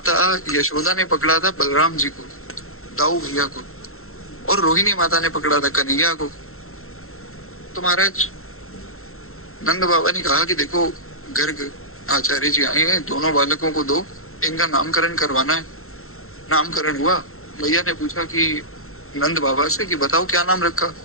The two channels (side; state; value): right; late; 0.62 ms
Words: यशोदा ने पकड़ा था बलराम जी को, दाऊ भैया को, और रोहिणी माता ने पकड़ा था कन्हैया को। तो महाराज नंद बाबा ने कहा कि देखो गर्ग आचार्य जी आए हैं, दोनों बालकों को दो, इनका नामकरण करवाना है। नामकरण हुआ। भैया ने पूछा कि नंद बाबा से कि बताओ क्या नाम रखा।